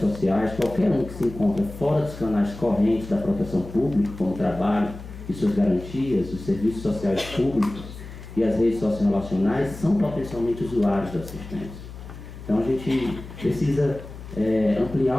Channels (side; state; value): left; noise; hum, 13 dB below the sound